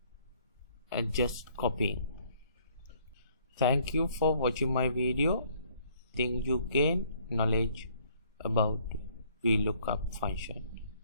just copying. Thank you for watching my video. Think you gain knowledge about Vlookup function.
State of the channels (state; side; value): inverted; both; correlation -0.62